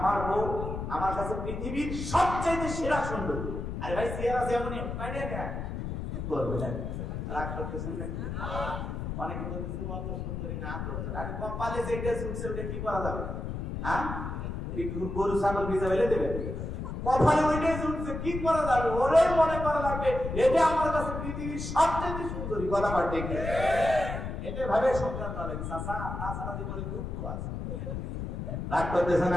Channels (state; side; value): noise; left; rumble, 5 dB below the sound